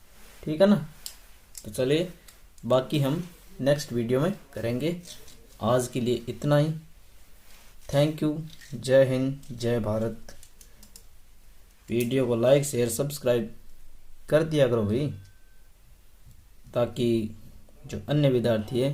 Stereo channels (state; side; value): identical; both; correlation 1.00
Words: ठीक है ना, तो चलिए बाकी हम नेक्स्ट वीडियो में करेंगे। आज के लिए इतना ही। थैंक यू, जय हिंद, जय भारत। वीडियो को लाइक शेयर सब्सक्राइब कर दिया करो भाई, ताकि जो अन्य विद्यार्थी है